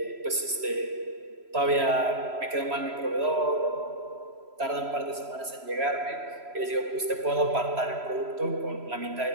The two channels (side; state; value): left; late; 3.0 ms